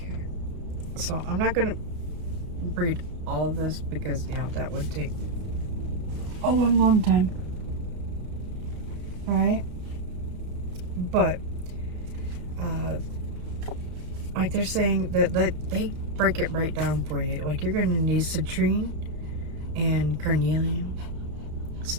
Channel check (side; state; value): left; late; 32 ms